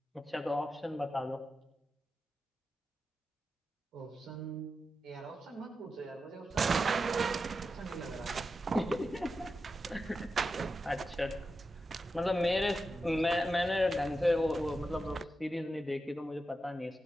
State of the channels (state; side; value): normal; both; correlation 0.90